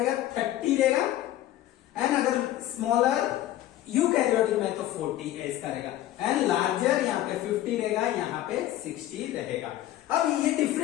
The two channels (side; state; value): right; quieter; 13.8 dB